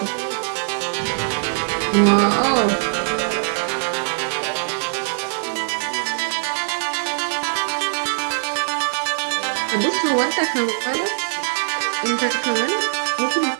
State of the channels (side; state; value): left; silent; digital silence